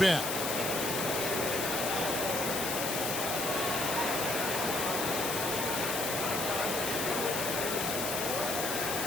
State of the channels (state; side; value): noise; left; hiss, 1 dB below the sound